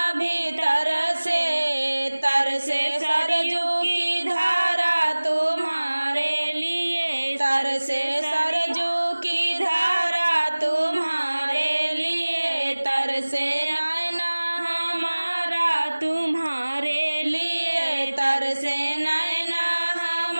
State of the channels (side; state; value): both; inverted; correlation -1.00